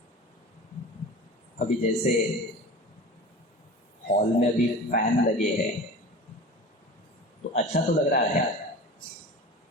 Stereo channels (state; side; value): normal; both; correlation 0.35